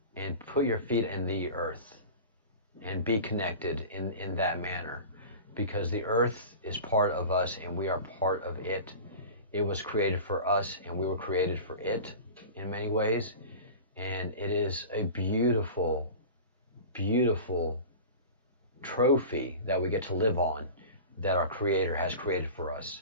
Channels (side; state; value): both; inverted; correlation -0.35